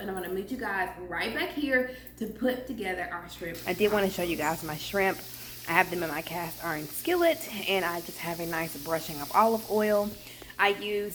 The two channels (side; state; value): both; identical; correlation 1.00